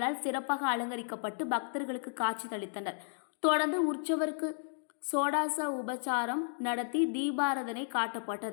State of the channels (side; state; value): right; silent; digital silence